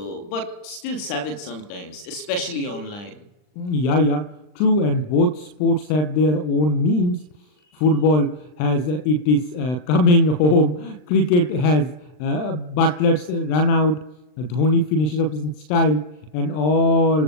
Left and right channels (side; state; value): right; late; 39 ms